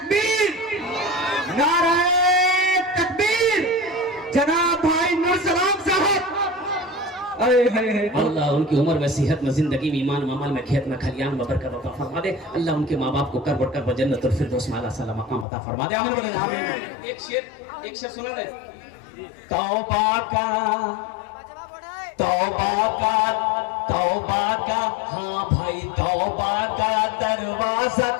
नारे तकबीर। जनाब भाई नूर सलाम साहब, अल्लाह उनकी उम्र में, सेहत में, जिंदगी में, ईमान में, अमल में, खेत में, खलियान में बरकत अता फरमा दे। अल्लाह उनके माँ बाप को करबट करबट जन्नतुल फिरदौस में आला सलाम मकाम अता फरमा दे। आमीन बोले आमीन। एक शेर सुना दे। तौबा का हाँ भाई, तौबा का दरवाजा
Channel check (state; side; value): drops out; right; at 15.5 s